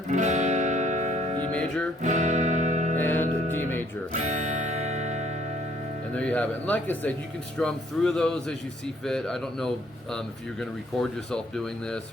E major, and D major. And there you have it. And like I said, you can strum through those as you see fit. I don't know if you're going to record yourself doing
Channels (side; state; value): both; normal; correlation 0.63